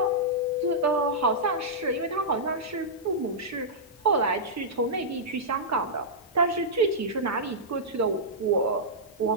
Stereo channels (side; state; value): both; normal; correlation -0.12